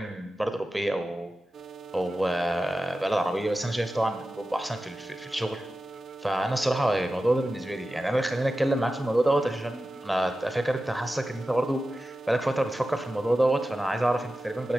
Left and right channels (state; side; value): normal; both; correlation 0.93